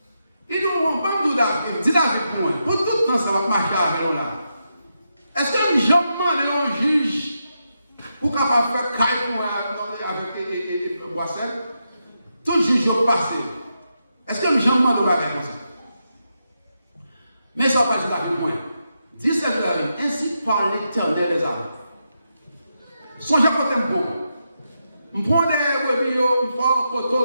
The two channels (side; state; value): both; inverted; correlation -0.85